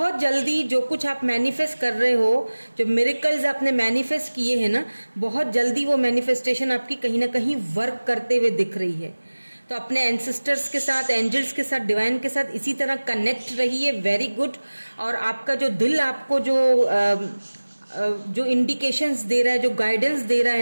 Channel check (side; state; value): both; inverted; correlation -1.00